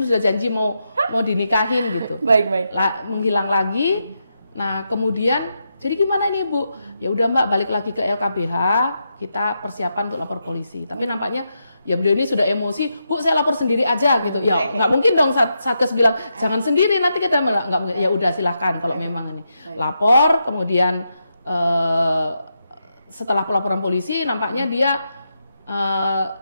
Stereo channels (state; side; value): inverted; both; correlation -0.84